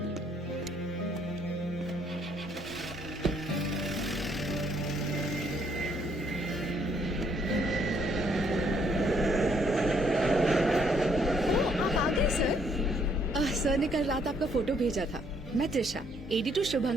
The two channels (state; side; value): normal; both; correlation 0.68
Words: सर ने कल रात आपका फोटो भेजा था। मैं त्रिशा, एडिटर